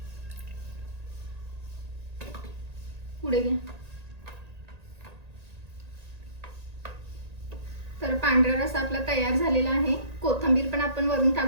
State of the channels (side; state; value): left; late; 1.9 ms